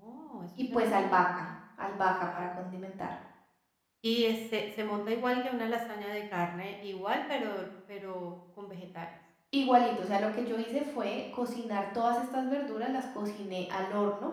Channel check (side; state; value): both; identical; correlation 1.00